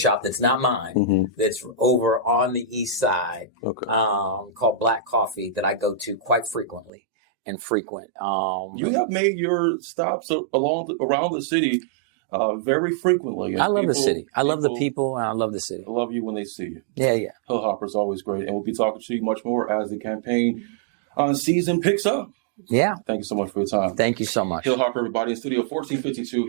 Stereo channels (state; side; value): drops out; left; at 6.9 s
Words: that's not mine, that's over on the east side, called Black Coffee, that I go to quite frequently and frequent. You have made your stops around the city very frequently. And I love the city. I love the people, and I love the city. Love you when they see you. Yeah. Hill Harper is always great, and we'll be talking to you much more as the campaign season picks up. Yeah. Thank you so much for your time. Thank you so much. Hill Harper, everybody, in Studio 1452